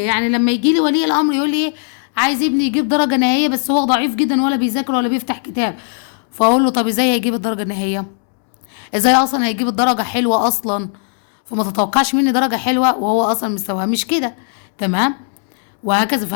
لما يجي لي ولي الامر يقول لي ايه، عايز ابني يجيب درجه نهائيه بس هو ضعيف جدا ولا بيذاكر ولا بيفتح كتاب، فاقول له طب ازاي هيجيب الدرجه النهائيه؟ ازاي اصلا هيجيب الدرجه حلوه اصلا؟ فما تتوقعش مني درجه حلوه وهو اصلا مستواه مش كده. تمام، وهكذا.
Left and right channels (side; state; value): right; silent; digital silence